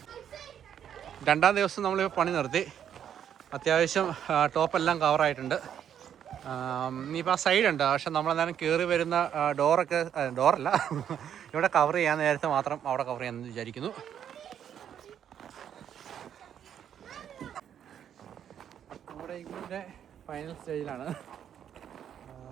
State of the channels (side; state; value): left; quieter; 9.2 dB